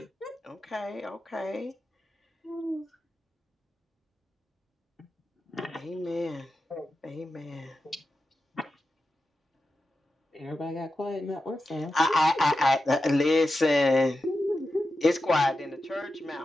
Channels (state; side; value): normal; both; correlation 0.91